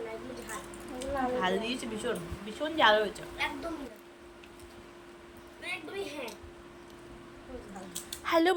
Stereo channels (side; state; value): both; identical; correlation 1.00